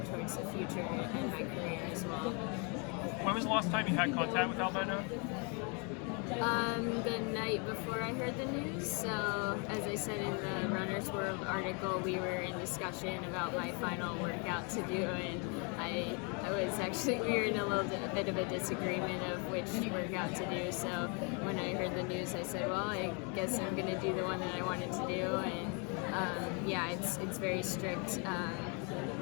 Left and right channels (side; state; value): right; quieter; 34.6 dB